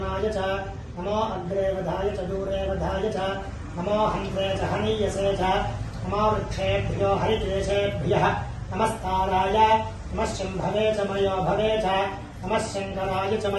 च नमो अग्रे वधाय च दूरे वधाय च नमो हन्त्रे च हनीयसे च नमो वृक्षेभ्यो हरिकेशेभ्यः नमस्ताराय नमः शम्भवे च मयो भवे च नमः शङ्कराय च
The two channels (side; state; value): both; identical; correlation 1.00